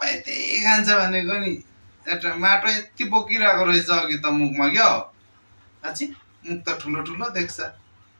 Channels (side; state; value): both; inverted; correlation -1.00